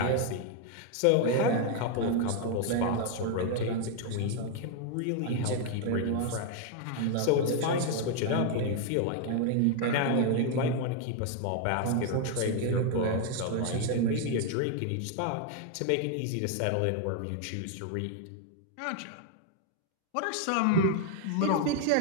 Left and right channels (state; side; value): different; both; correlation 0.00